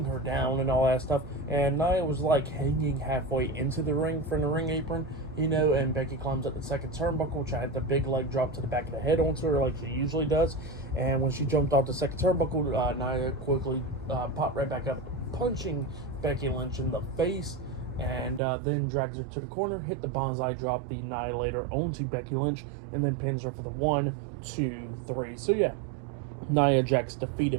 her down and all that stuff, and Nia was, like, hanging halfway into the ring from the ring apron, you know, and Becky climbs up the second turnbuckle, tried the big leg drop to the back of the head onto her like she usually does, and when she jumped off the second turnbuckle, Nia quickly popped right back up, punching Becky Lynch in the face, and then drags her to the corner, hit the bonsai drop, the Annihilator onto Becky Lynch, and then pins her for the 1, 2, 3. So yeah, Nia Jax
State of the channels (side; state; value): left; drops out; at 18.4 s